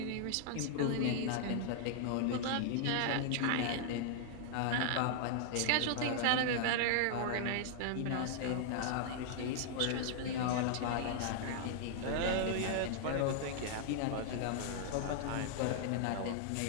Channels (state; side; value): different; both; correlation 0.00